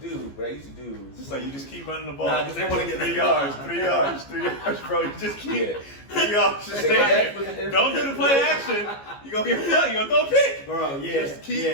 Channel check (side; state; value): right; late; 15 ms